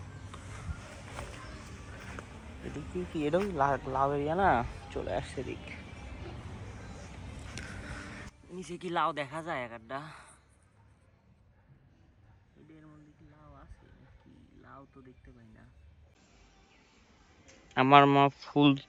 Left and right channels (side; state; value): both; identical; correlation 1.00